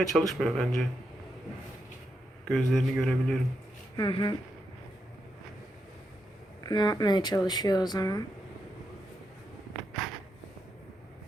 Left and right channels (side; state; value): both; normal; correlation 0.83